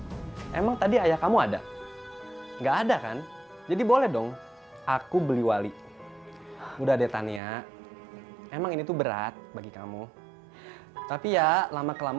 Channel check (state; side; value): drops out; left; at 7.4 s